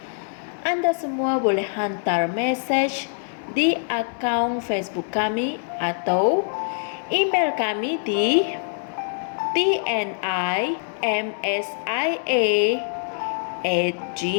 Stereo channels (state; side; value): silent; right; digital silence